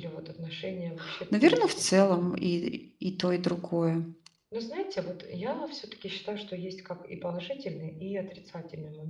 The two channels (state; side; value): identical; both; correlation 1.00